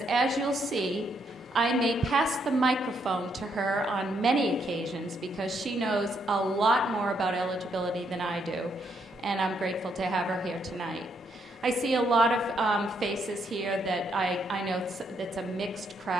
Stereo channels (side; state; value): both; normal; correlation 0.75